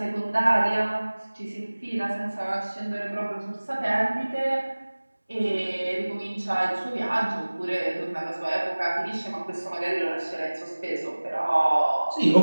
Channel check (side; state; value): both; inverted; correlation -1.00